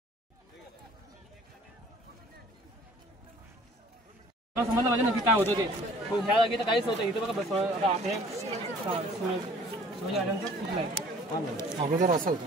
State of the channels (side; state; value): both; normal; correlation 0.53